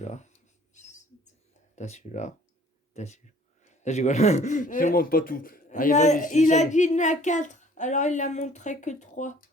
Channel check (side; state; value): both; normal; correlation 0.55